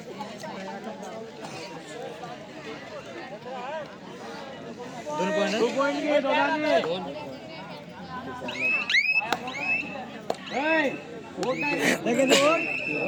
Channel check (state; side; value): identical; both; correlation 1.00